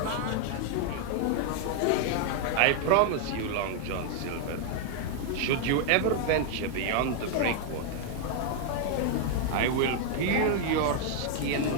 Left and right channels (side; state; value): both; different; correlation 0.00